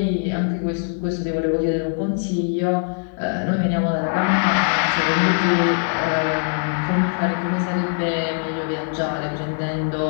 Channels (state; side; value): silent; right; digital silence